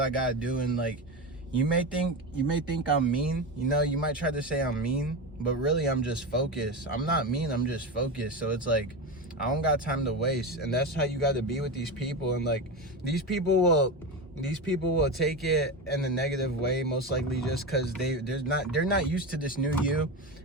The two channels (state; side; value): normal; both; correlation 0.19